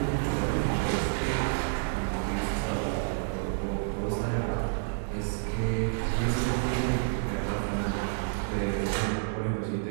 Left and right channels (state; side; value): silent; left; digital silence